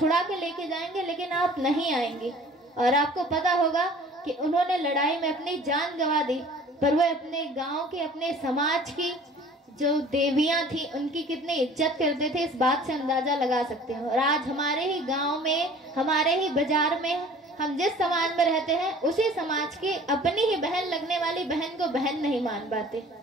के लेके जाएंगे, लेकिन आप नहीं आएंगे। और आपको पता होगा कि उन्होंने लड़ाई में अपनी जान गंवा दी, पर वो अपने गांव के, अपने समाज की जो देवियां थी उनकी कितनी इज्जत करते थे, इस बात से अंदाजा लगा सकते हैं। और आज हमारे ही गांव में, हमारे ही बाजार में, हम जिस समाज में रहते हैं उसी समाज की अपनी ही बहन लगने वाली बहन को बहन नहीं मान पाते।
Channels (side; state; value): both; normal; correlation 0.48